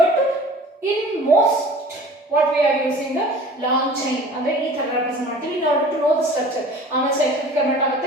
But in most what we are using the long chain ಅಂದ್ರೆ ಈ ತರ ರೆಪ್ರೆಸೆಂಟ್ ಮಾಡ್ತೀವಿ in order to know the structure. ಆಮೇಲೆ ಸೈಕ್ಲಿಕ್ ಕನ್ವರ್ಟ್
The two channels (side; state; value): both; normal; correlation 0.44